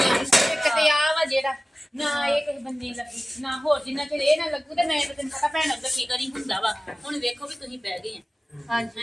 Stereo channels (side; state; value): both; normal; correlation 0.97